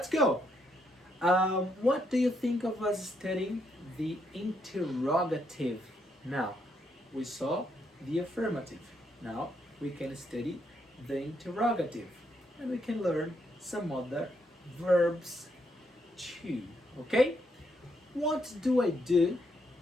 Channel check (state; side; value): normal; both; correlation 0.76